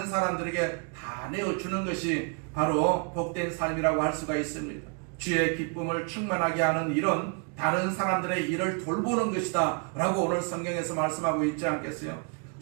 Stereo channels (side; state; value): left; quieter; 39.5 dB